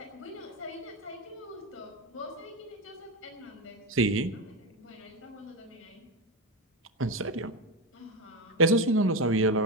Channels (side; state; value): both; normal; correlation 0.14